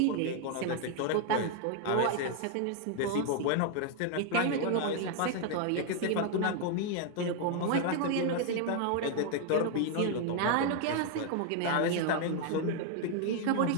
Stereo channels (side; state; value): both; different; correlation 0.00